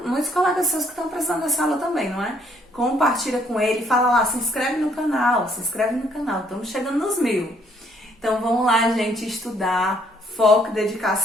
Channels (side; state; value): both; normal; correlation 0.66